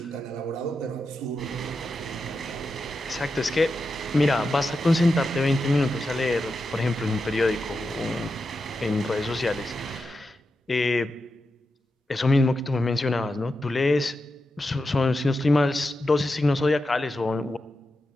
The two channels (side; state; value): both; normal; correlation 0.89